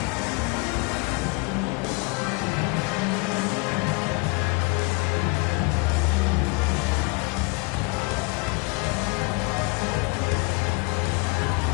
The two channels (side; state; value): right; quieter; 30.3 dB